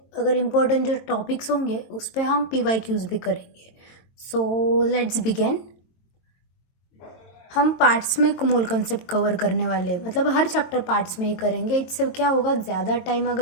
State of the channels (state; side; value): late; right; 22 ms